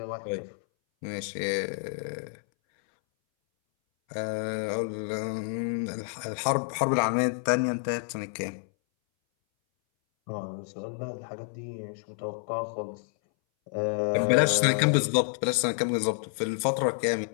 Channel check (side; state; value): right; silent; 59 dB below the other